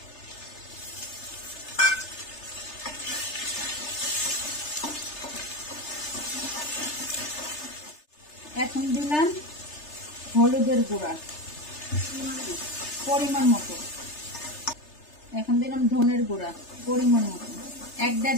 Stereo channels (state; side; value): late; right; 3.3 ms